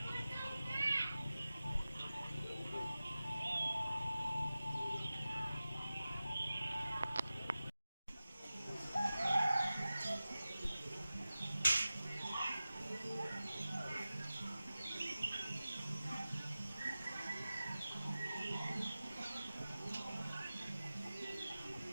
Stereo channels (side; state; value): both; inverted; correlation -0.95